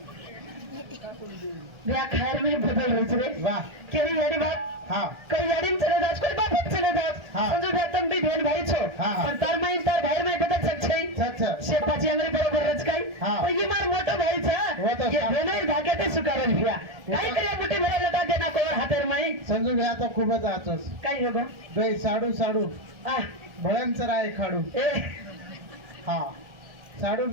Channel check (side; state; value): left; late; 1.4 ms